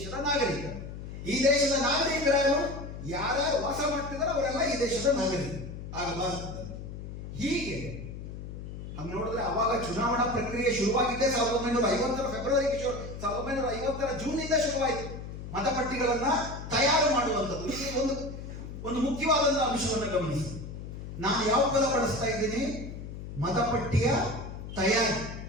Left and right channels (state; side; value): noise; left; hum, 9 dB below the sound